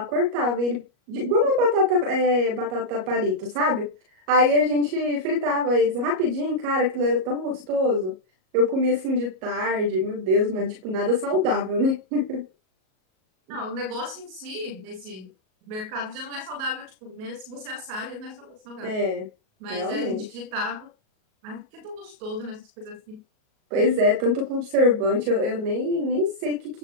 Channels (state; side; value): late; left; 38 ms